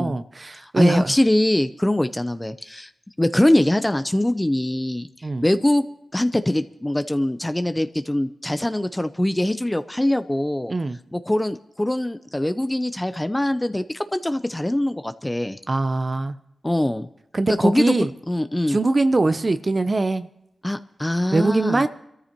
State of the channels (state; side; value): normal; both; correlation 0.98